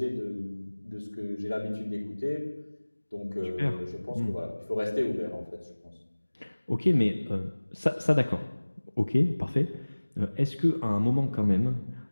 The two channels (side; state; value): both; inverted; correlation -1.00